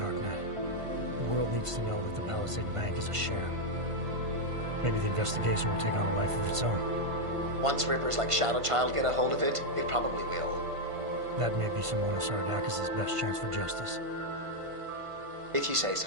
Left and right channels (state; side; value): late; left; 1.5 ms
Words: The world needs to know that the Palisade Bank is a sham. Maybe the investigation will take on a life of its own. Once rippers like Shadow Child get a hold of it, it probably will. That may be Simona Saradakis' best chance for justice. If you say